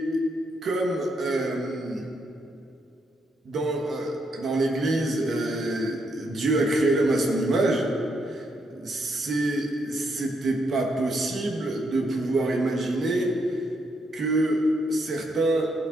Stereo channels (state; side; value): normal; both; correlation 0.77